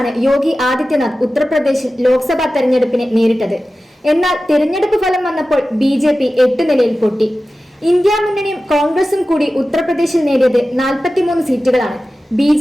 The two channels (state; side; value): normal; both; correlation 0.95